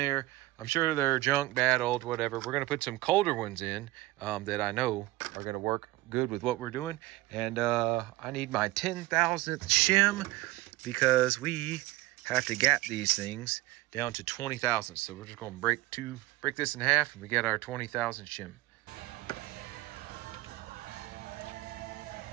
I'm sure they're junk, bad, old, whatever. We're gonna put some colder ones in that I know are gonna work good with what we're doing. And I need my 10,000th shim because we have to gap these things down to 20,000. So we're just gonna break this in half and we get our 20,000 shim.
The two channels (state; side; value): quieter; left; 19.0 dB